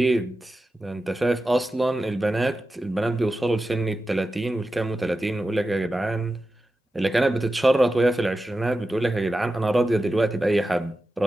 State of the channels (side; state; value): both; normal; correlation 0.92